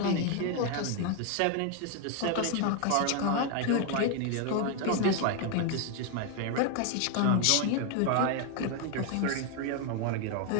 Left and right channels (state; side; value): different; both; correlation 0.01